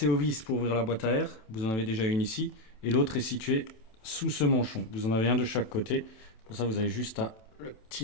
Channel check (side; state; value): right; late; 27 ms